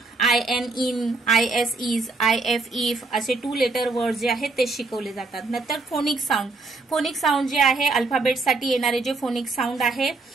IN, IN, IS, IS, IF, IF असे 2 लेटर वर्ड जे आहेत ते शिकवले जातात। नंतर फोनिक साऊंड, फोनिक साऊंड जे आहे अल्फाबेटसाठी येणारे जे फोनिक साऊंड आहे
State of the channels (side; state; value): left; quieter; 3.6 dB